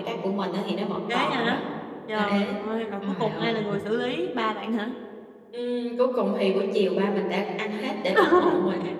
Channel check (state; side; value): identical; both; correlation 1.00